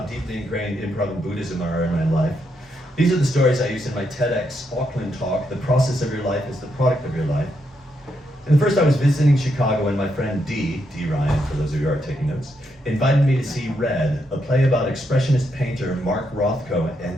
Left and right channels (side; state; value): both; normal; correlation 0.79